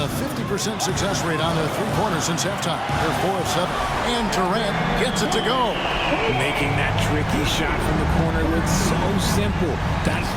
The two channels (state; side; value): identical; both; correlation 1.00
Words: a 50% success rate on their three-pointers since halftime. They're 4 of 7. And Durant gets it to go. Making that tricky shot from the corner look so simple. That's